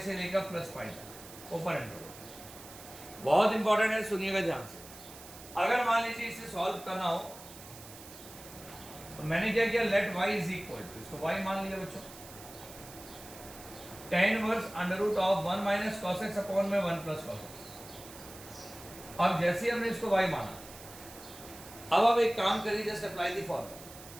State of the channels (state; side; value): noise; right; hiss, 16 dB below the sound